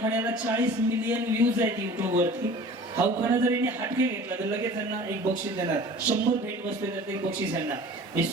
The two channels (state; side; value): normal; both; correlation 0.43